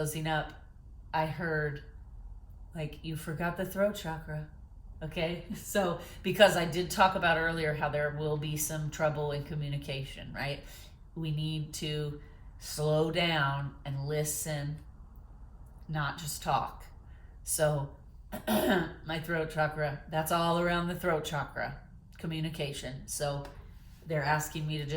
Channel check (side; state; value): both; identical; correlation 1.00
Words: up, I heard like, you forgot the throat chakra. Okay, so because I did talk about earlier how there will be some trouble in communication, right? We need to slow down and listen, not just talk. So my throat chakra, that's all around the throat chakra, communication. So they're asking me to